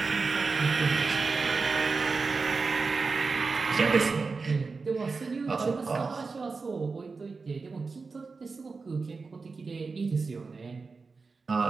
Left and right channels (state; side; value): quieter; left; 4.4 dB